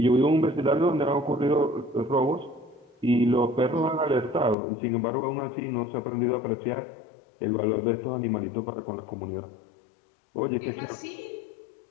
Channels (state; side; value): drops out; right; at 4.5 s